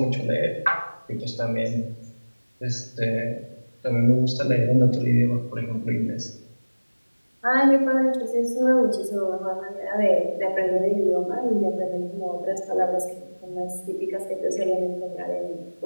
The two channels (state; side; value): inverted; both; correlation -1.00